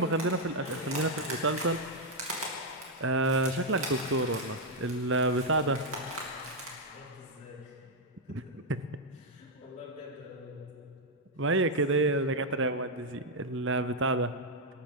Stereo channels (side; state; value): both; normal; correlation -0.02